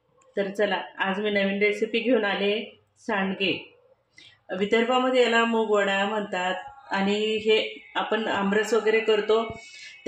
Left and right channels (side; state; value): both; identical; correlation 1.00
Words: तर चला, आज मी नवीन रेसिपी घेऊन आले. सांडगे. विदर्भामध्ये याला मूगवडा म्हणतात आणि हे आपण आमरस वगैरे करतो